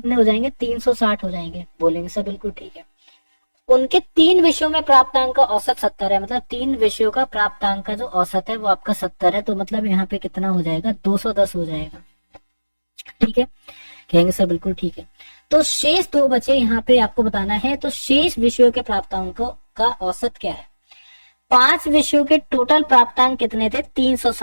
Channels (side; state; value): both; inverted; correlation -1.00